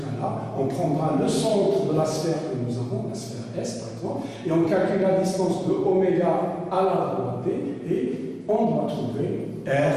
on prendra le centre de la sphère que nous avons, la sphère S par exemple, et on calcule la distance de oméga à la droite D, et on doit trouver R,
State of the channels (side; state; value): both; identical; correlation 1.00